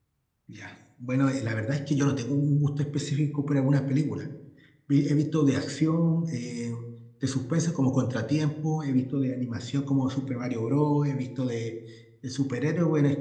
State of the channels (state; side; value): identical; both; correlation 1.00